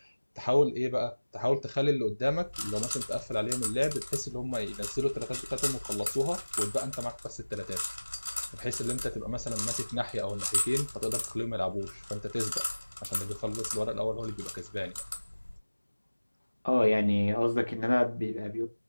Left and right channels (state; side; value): inverted; both; correlation -1.00